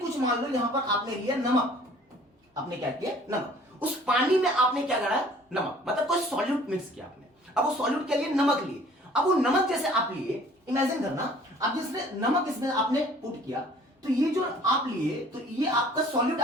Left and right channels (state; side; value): normal; both; correlation 0.53